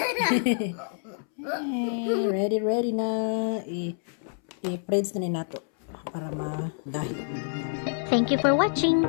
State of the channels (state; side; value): silent; right; 60 dB below the other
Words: ready na. I-preds na ni nato para magahi. Thank you for watching.